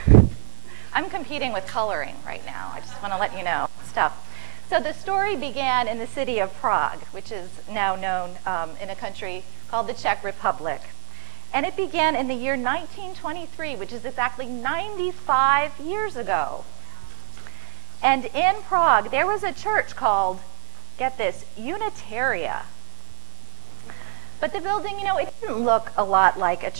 I'm competing with coloring right now. I just want to let you know stuff. So the story began in the city of Prague, which is now known in a country called the Czech Republic. And it began in the year 1923, which is exactly 95 years ago. And in Prague, there was a church called, get this, Unitaria. But the building, it didn't look a lot like a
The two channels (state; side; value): silent; left; 56 dB below the other